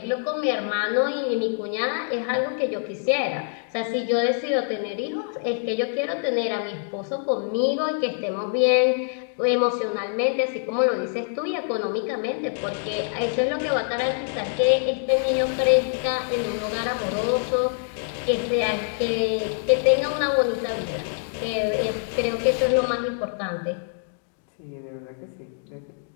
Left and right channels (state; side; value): silent; right; digital silence